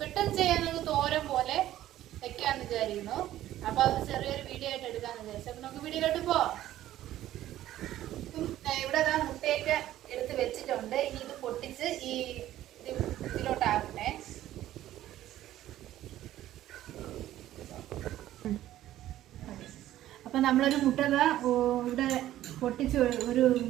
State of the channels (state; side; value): quieter; left; 13.5 dB